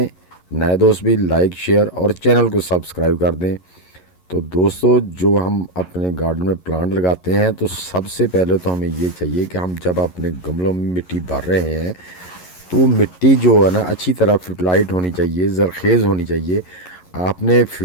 نئے دوست بھی لائک شیئر اور چینل کو سبسکرائب کر دیں۔ تو دوستو، جو ہم اپنے گارڈن میں پلانٹ لگاتے ہیں تو سب سے پہلے تو ہمیں یہ چاہیے کہ ہم جب اپنے گملوں میں مٹی بھر رہے ہیں تو مٹی جو ہے نا اچھی طرح فرٹلائٹ ہونی چاہیے، زرخیز ہونی چاہیے۔ آپ نے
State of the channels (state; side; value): late; right; 11 ms